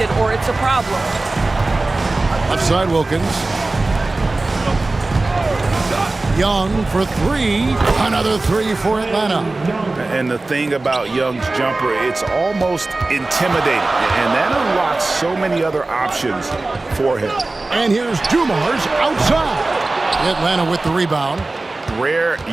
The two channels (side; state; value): left; quieter; 3.2 dB